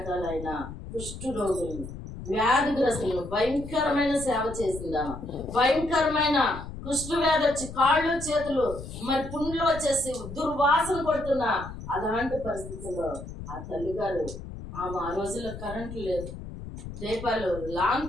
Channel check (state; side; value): noise; left; rumble, 11 dB below the sound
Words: కుష్టు రోగులను, వ్యాధిగ్రస్తులను భయంకరమైన సేవ చేసిందామా. భయంకరమైన కుష్టు వ్యాధి వచ్చి కాళ్ళు చేతులు మరి పుండ్లు వచ్చేసి దుర్వాసన కొడుతున్నా అలాంటి పరిస్థితుల్లో ఆ తల్లిగారు ఆమె ఆ రోజుల్లో కరెంటు లేదు, దీపాలు